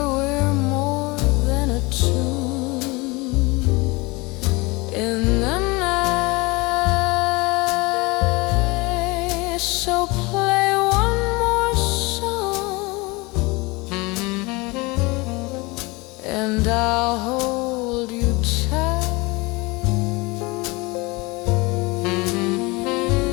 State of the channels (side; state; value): right; quieter; 24.8 dB